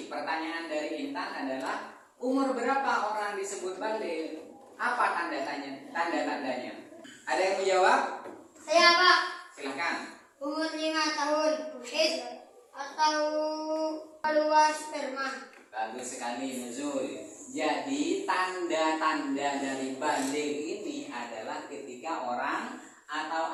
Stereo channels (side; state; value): both; identical; correlation 1.00